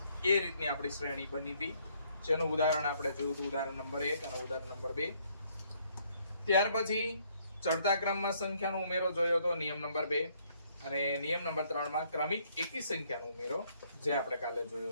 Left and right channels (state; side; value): inverted; both; correlation -0.67